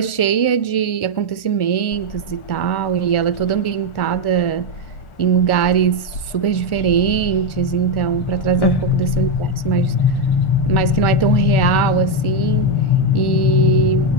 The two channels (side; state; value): right; late; 1.1 ms